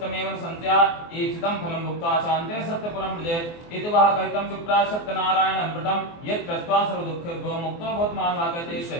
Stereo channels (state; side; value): late; right; 24 ms